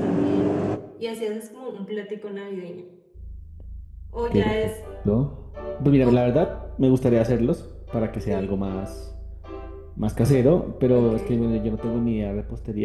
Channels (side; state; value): both; identical; correlation 1.00